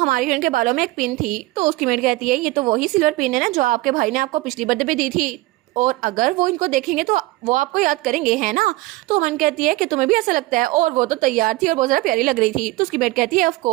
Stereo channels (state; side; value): quieter; left; 19.9 dB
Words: हिरन के बालों में एक पिन थी, तो उसकी मेड कहती है ये तो वही सिल्वर पिन है ना जो आपके भाई ने आपको पिछली बर्थडे पे दी थी, और अगर वो इनको देखेंगे तो वो आपको याद करेंगे, है ना? तो मन कहती है कि तुम्हें भी ऐसा लगता है, और वो तो तैयार थी और बहुत ज़्यादा प्यारी लग रही थी। तो उसकी बेट कहती है ऑफ